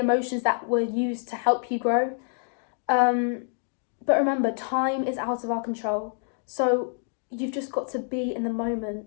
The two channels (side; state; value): right; silent; 56 dB below the other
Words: that were used to help you grow. But remember, time is out of our control. So you've just got to be in the moment,